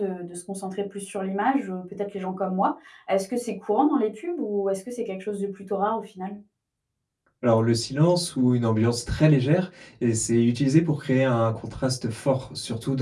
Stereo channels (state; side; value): identical; both; correlation 1.00